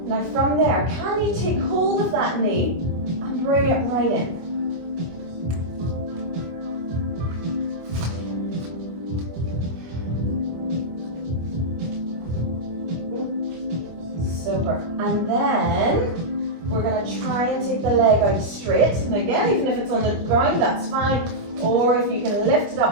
Now from there, can you take hold of that knee and bring it right in? Super. And then we're going to try and take the leg out straight. And again, even if it's on the ground, that's fine. Or if you can lift it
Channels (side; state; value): left; late; 25 ms